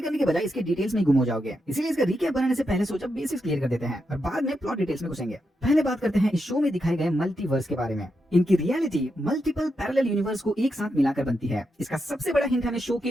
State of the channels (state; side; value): normal; both; correlation 0.85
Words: करने के बजाय इसके डिटेल्स में गुम हो जाओगे। इसीलिए इसका रिकैप बनाने से पहले सोचा बेसिक्स क्लियर कर देते हैं और बाद में प्लॉट डिटेल्स में घुसेंगे। पहले बात करते हैं इस शो में दिखाए गए मल्टीवर्स के बारे में। इनकी रियलिटी मल्टीपल पैरेलल यूनिवर्स को एक साथ मिलाकर बनती है। इसका सबसे बड़ा हिंट हमें शो